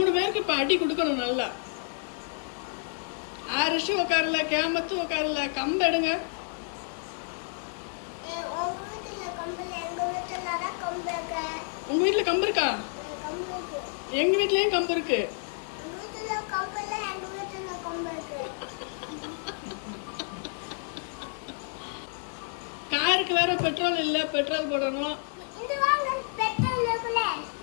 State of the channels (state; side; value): silent; right; 58 dB below the other